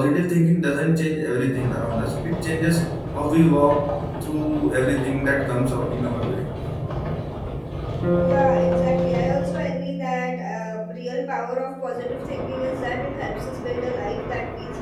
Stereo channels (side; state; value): both; identical; correlation 1.00